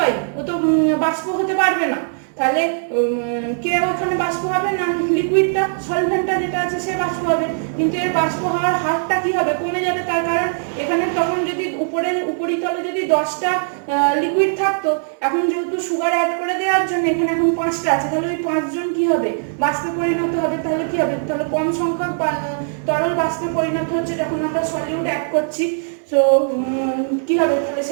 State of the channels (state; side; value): silent; left; digital silence